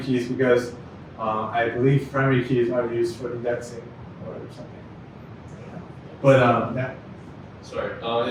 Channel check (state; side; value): identical; both; correlation 1.00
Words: keys because I believe primary keys are used for indexing or something. But yeah. Sorry,